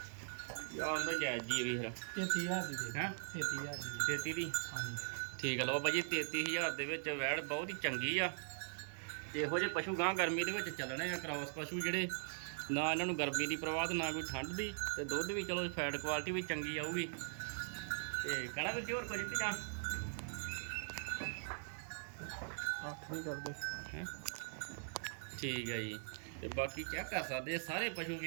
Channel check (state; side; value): silent; left; 50 dB below the other